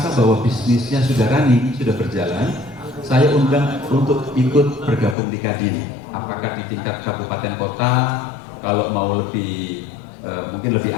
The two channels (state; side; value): drops out; right; at 5.2 s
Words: bahwa bisnisnya sudah running, sudah berjalan, saya undang untuk ikut bergabung di Kadin. Apakah di tingkat kabupaten kota, kalau mau lebih mungkin lebih